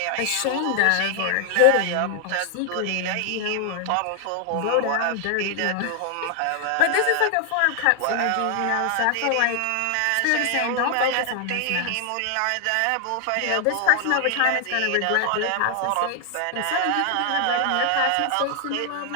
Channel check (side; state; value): both; different; correlation 0.00